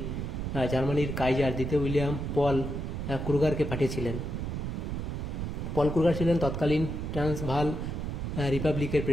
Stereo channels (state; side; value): noise; right; rumble, 3 dB below the sound